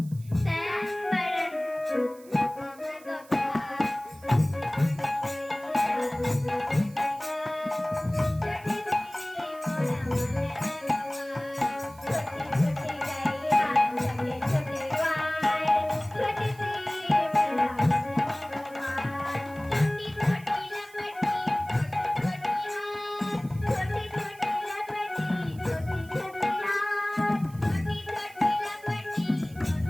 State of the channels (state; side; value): noise; right; hiss, 24 dB below the sound